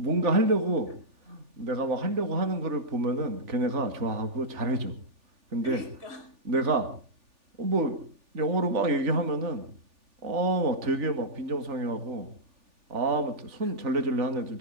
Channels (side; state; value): left; late; 3.4 ms